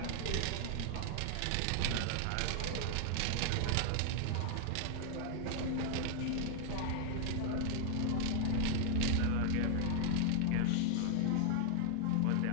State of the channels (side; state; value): both; different; correlation 0.00